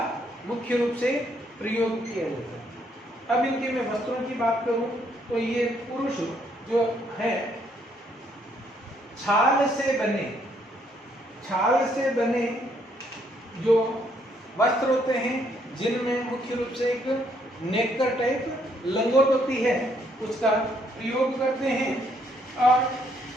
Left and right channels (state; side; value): normal; both; correlation 0.70